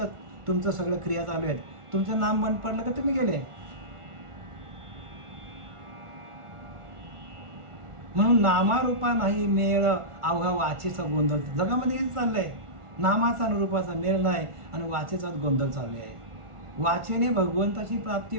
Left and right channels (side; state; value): left; late; 1.4 ms